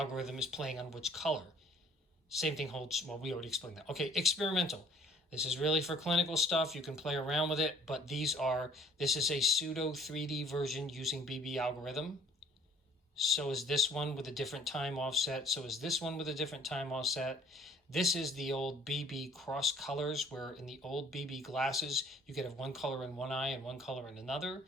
is playing on which color. Same thing holds, well, we already explained that. Okay, experimental. This is really for clinical stuff. You can play around with it, but this is a pseudo 3D version using BB algorithm. So is this one with a different time offset. So is this one with a different time offset. This is the old BB cross colors, where in the old BB glasses, you could have one color in one eye and one color in another.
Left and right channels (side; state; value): both; normal; correlation 0.55